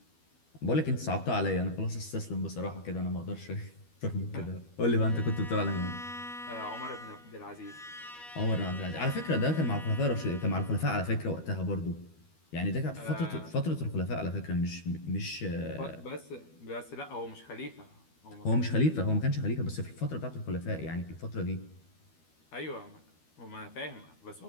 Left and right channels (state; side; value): late; right; 12 ms